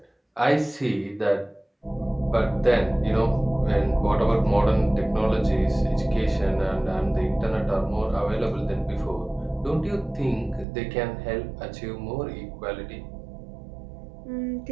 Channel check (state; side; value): drops out; left; at 10.7 s